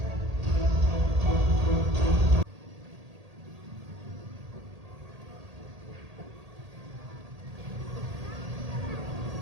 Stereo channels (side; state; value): left; late; 1.8 ms